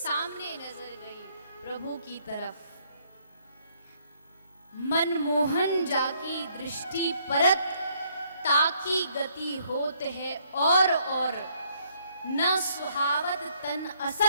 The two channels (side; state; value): both; inverted; correlation -0.68